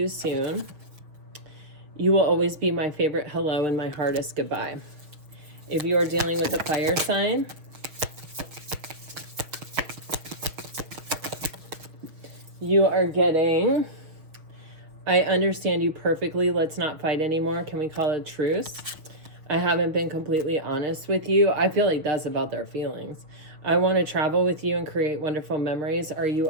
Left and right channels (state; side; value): late; left; 6.4 ms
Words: soon. You will always be my favorite hello and my hardest goodbye. If you are dealing with a fire sign, you are getting, I understand you perfectly. Let's not fight anymore. Can we call it a truce? I haven't been completely honest with you. I feel like that's about their feelings. I want to travel with you and create wonderful memories. Are you